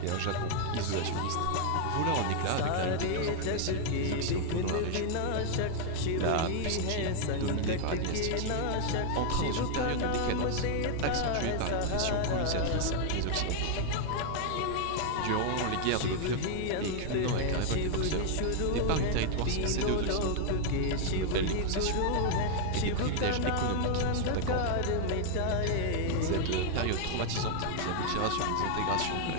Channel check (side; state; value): both; different; correlation 0.00